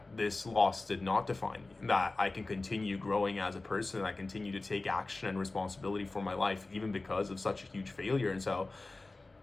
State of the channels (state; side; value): quieter; right; 3.2 dB